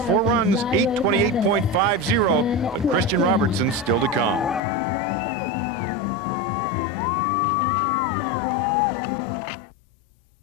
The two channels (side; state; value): right; drops out; at 4.6 s